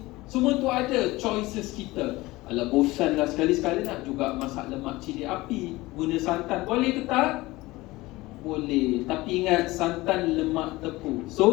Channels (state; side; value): quieter; right; 19.9 dB